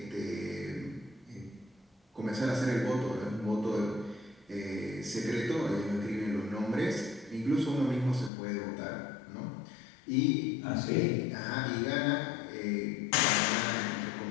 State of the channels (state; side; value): drops out; right; at 8.3 s